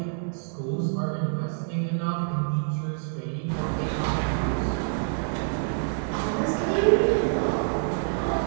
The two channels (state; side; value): silent; left; digital silence